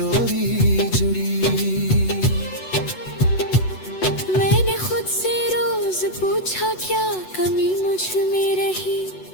जुड़ी। मैंने खुद से रोज पूछा क्या कमी मुझ में रही,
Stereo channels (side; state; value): right; late; 8.0 ms